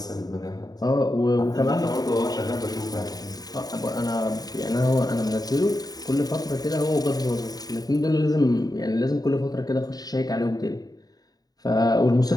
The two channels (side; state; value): right; late; 0.18 ms